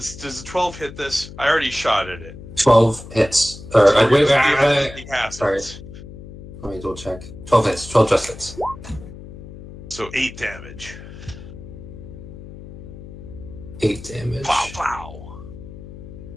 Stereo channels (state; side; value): noise; left; hum, 14 dB below the sound